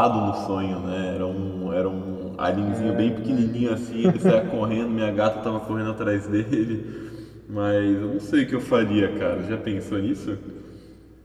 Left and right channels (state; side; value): identical; both; correlation 1.00